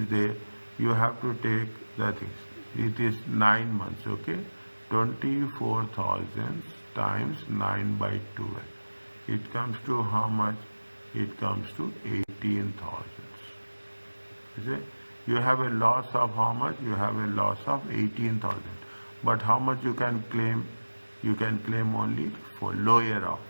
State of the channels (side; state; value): both; inverted; correlation -1.00